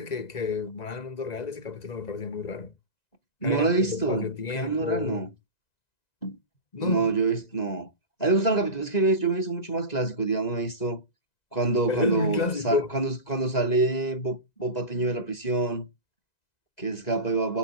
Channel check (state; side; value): late; right; 2.0 ms